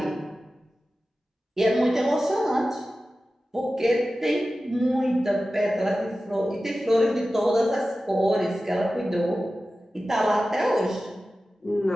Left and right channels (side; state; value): both; normal; correlation 0.95